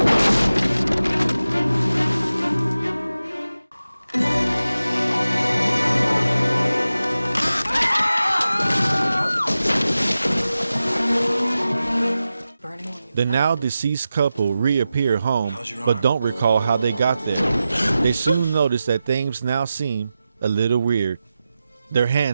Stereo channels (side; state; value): both; inverted; correlation -0.93